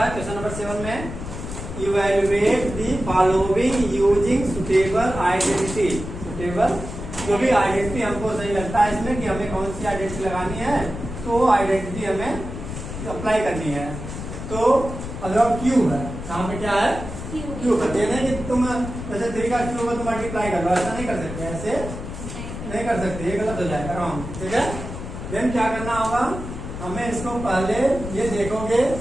क्वेश्चन नंबर 7 में evaluate the following using suitable identity. Suitable जो भी आइडेंटिटी हमको सही लगता है इसमें कि हमें कौन सी आइडेंटिटी लगानी है तो आइडेंटिटी हमें अप्लाई करनी है। तो अगर क्यूब है यहाँ पे क्या है क्यूब है, ये नहीं कि तुम जैसे 3 का क्यूब है तो मल्टीप्लाई कर लो, ऐसा नहीं कर सकते, ऐसे नहीं कर सकते, ये गलत हो जाएगा रॉन्ग। ठीक है, देन क्या करना होगा हमें इसको पहले ये देखोगे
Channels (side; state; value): left; noise; rumble, 8 dB below the sound